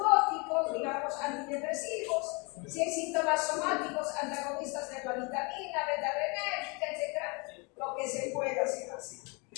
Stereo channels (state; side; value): quieter; right; 30.5 dB